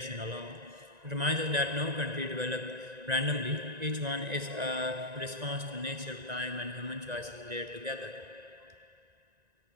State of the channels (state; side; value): late; left; 1.9 ms